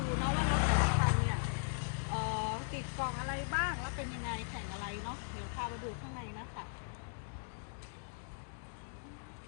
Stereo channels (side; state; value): right; silent; digital silence